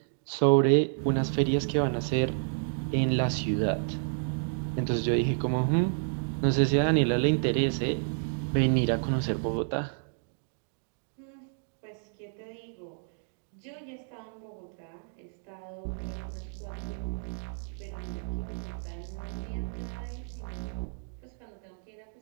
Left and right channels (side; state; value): left; silent; digital silence